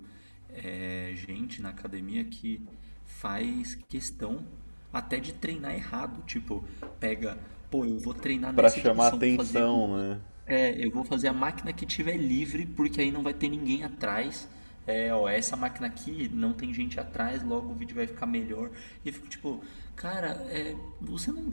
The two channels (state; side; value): inverted; both; correlation -1.00